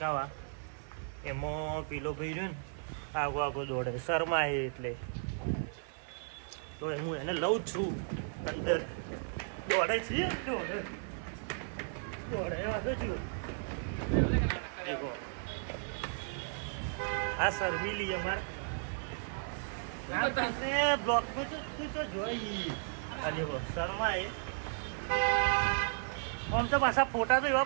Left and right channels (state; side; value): silent; left; 54 dB below the other